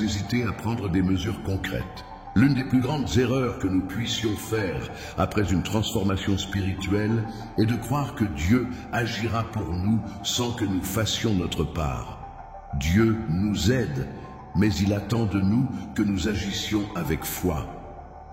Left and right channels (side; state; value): both; identical; correlation 1.00